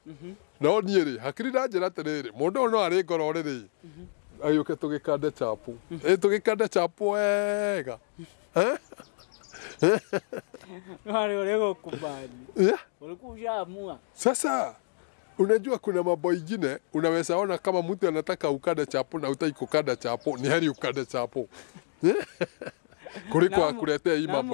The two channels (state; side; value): silent; right; digital silence